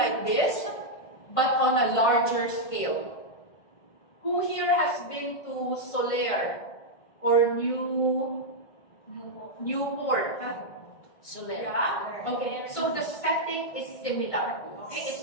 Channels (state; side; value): late; right; 1.5 ms